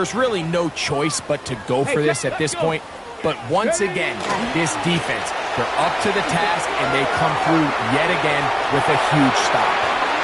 really no choice but to go for this at this point. But once again, this defense, they're up to the task, and they come through yet again with a huge stop.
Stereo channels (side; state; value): both; identical; correlation 1.00